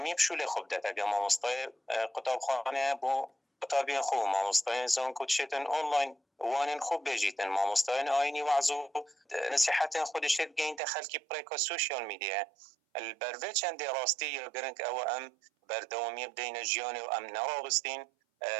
بشول خوب ده اگه ما مستای قطاب خانه بو قطابی خو ما مستای زون کو دشتن آنلاین وانن خوب بجیتن ما مستای آینی وعظو نصیحت خودش گین دخل کی پریکا سوشیال میدیا البروی چند راستی یا گرنگ او ام بردوامی بدین جیان و ام نوابستین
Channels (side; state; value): left; drops out; at 10.8 s